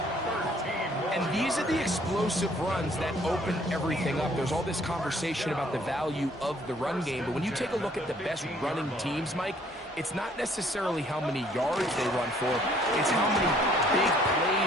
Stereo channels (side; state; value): both; normal; correlation 0.61